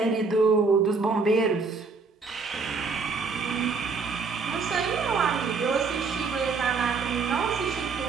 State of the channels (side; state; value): left; quieter; 4.6 dB